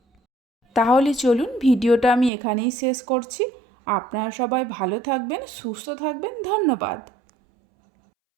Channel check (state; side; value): drops out; left; at 2.3 s